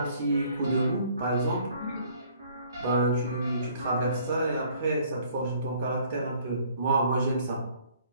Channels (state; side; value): inverted; both; correlation -0.59